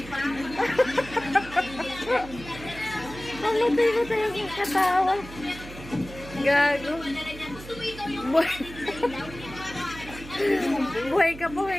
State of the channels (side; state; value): right; noise; hum, 15 dB below the sound